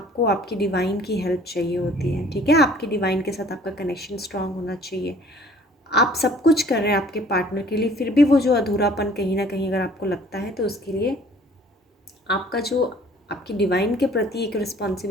आपकी डिवाइन की हेल्प चाहिए होती है। ठीक है, आपकी डिवाइन के साथ आपका कनेक्शन स्ट्रांग होना चाहिए। आप सब कुछ कर रहे हैं आपके पार्टनर के लिए, फिर भी वो जो अधूरापन कहीं ना कहीं अगर आपको लगता है, तो उसके लिए आपका जो आपकी डिवाइन के प्रति एक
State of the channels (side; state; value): both; normal; correlation 0.53